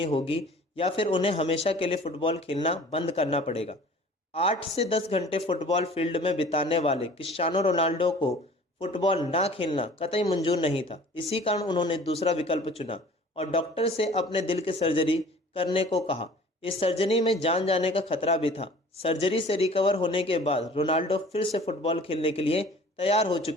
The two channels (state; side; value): normal; both; correlation 0.47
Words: होगी या फिर उन्हें हमेशा के लिए फुटबॉल खेलना बंद करना पड़ेगा। 8 से 10 घंटे फुटबॉल फील्ड में बिताने वाले क्रिस्टियानो रोनाल्डो को फुटबॉल ना खेलना कतई मंजूर नहीं था। इसी कारण उन्होंने दूसरा विकल्प चुना और डॉक्टर से अपने दिल की सर्जरी करने को कहा। इस सर्जरी में जान जाने का खतरा भी था। सर्जरी से रिकवर होने के बाद रोनाल्डो फिर से फुटबॉल खेलने के लिए तैयार हो